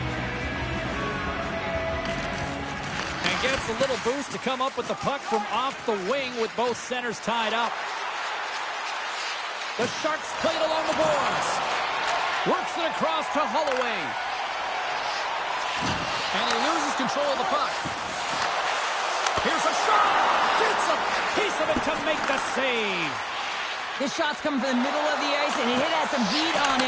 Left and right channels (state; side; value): identical; both; correlation 1.00